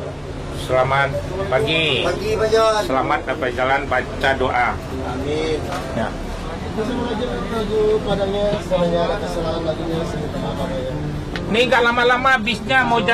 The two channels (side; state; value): both; identical; correlation 1.00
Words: selamat pagi. Pagi Pak John. Selamat dapat jalan baca doa. Amin. Ya. Menuju Padangnya, semuanya kesalahan lagunya semoga maaf ya. Ini nggak lama-lama bisnya mau